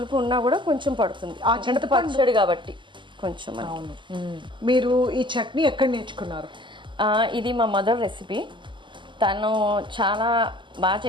ఉన్నా కూడా కొంచెం పడుతుంది. ఆ చింతపండు కాబట్టి కొంచెం. అవును. మీరు ఈ చట్నీ ఎక్కడ నేర్చుకున్నారు? ఇది మా మదర్ రెసిపీ. తను చాలా బాగా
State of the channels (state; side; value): late; left; 0.24 ms